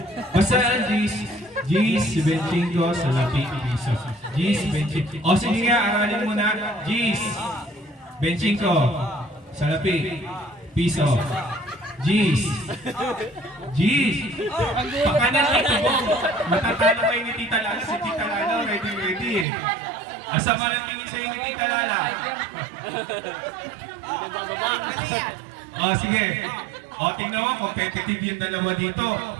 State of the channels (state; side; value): drops out; left; at 19.5 s